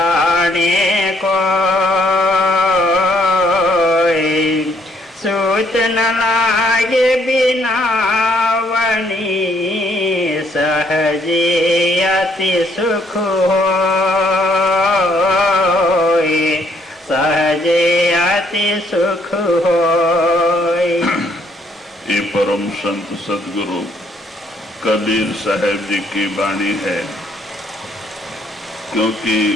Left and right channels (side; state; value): both; normal; correlation 0.68